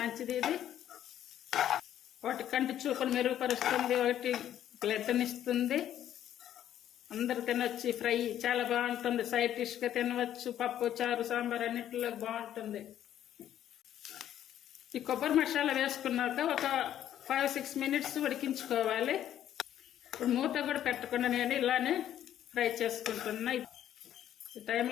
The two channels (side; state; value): right; quieter; 11.2 dB